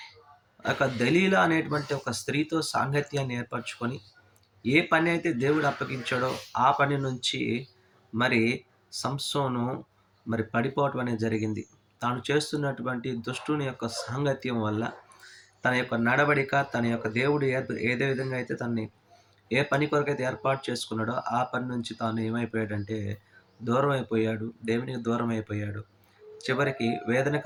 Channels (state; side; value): identical; both; correlation 1.00